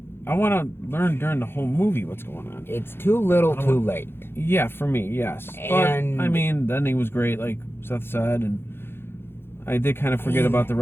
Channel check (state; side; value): late; right; 0.11 ms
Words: I want to learn during the whole movie what's going on. It's too little, too late. Yeah, for me, yes. And but I mean, the ending was great, like Seth said, and I did kind of forget about the